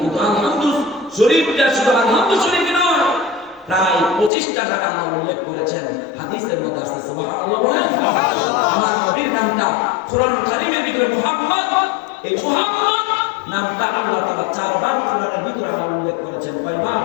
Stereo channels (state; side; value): drops out; right; at 4.3 s